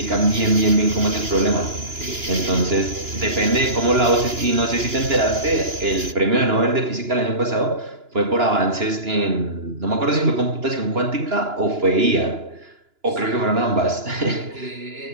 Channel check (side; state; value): left; late; 2.9 ms